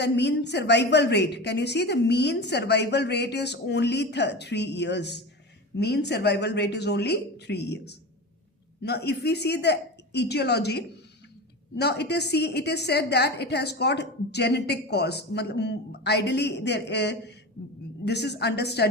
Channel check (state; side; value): normal; both; correlation 0.27